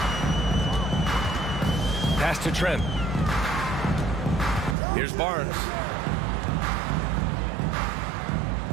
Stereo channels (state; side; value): drops out; left; at 4.8 s